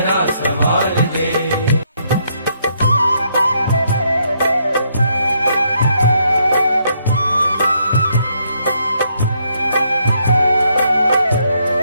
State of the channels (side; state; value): both; inverted; correlation -0.73